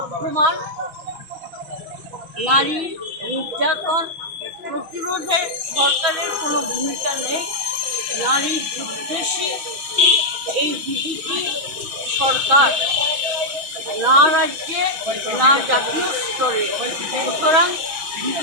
নারী নির্যাতন প্রতিরোধে সরকারের কোনো ভূমিকা নেই। নারী বিদ্বেষী এই বিজেপি সরকার না রাজ্যে না জাতীয় স্তরে, সুতরাং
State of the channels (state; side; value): late; left; 6.2 ms